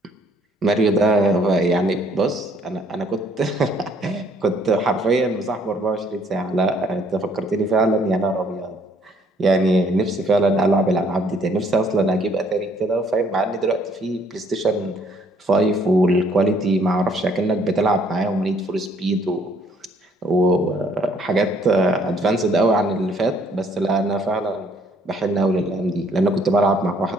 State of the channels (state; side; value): normal; both; correlation 0.63